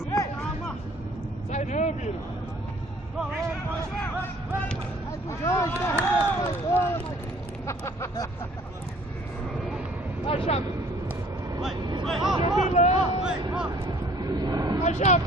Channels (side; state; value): both; normal; correlation 0.55